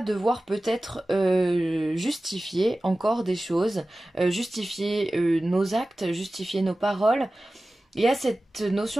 peut-être justifier encore des choses, justifier nos actes, justifier nos paroles. Il y a cette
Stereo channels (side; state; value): both; normal; correlation 0.96